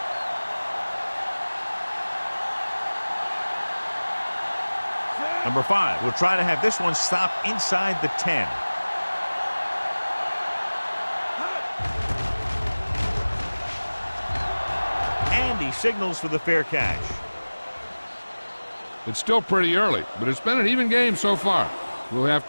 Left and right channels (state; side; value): inverted; both; correlation -1.00